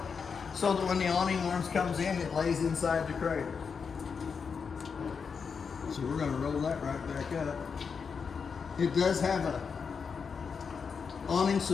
so that when the awning arms comes in, it lays inside the cradle. So we're going to roll that right back up. It does have a awning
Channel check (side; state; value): right; quieter; 5.9 dB